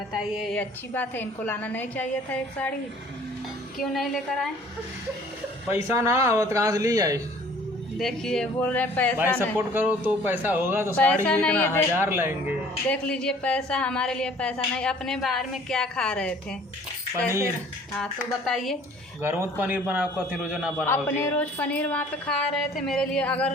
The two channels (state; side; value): normal; both; correlation 0.53